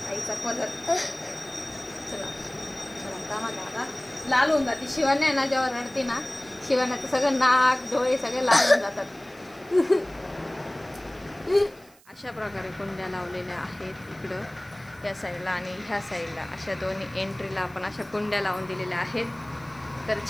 आईचा पदर. चला चला आता लाल होऊन जाते. शिवानी आहे ना जेव्हा रडते ना शिवान्याचं सगळं नाक डोळे सगळे लाल होऊन जातात. अशा प्रकारे कुंड्या लावलेल्या आहेत इकडं या साईडला आणि ह्या साईडला. अशा दोन्ही एंट्रीला आपण अशा कुंड्या लावून दिलेल्या आहेत. तर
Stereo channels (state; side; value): noise; right; hiss, 27 dB below the sound